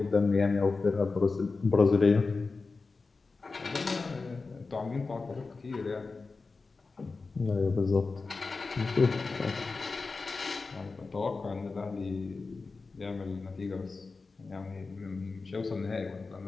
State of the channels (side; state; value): right; quieter; 4.1 dB